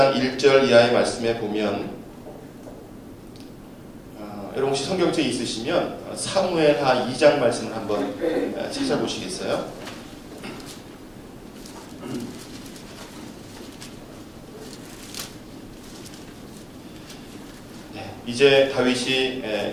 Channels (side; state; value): both; identical; correlation 1.00